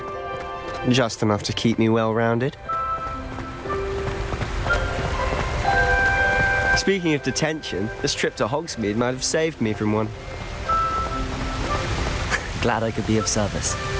Just enough to keep me well-rounded. Speaking of detention, this trip to Hogsmeade might have saved me from one. Glad I could be of service.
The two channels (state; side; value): identical; both; correlation 1.00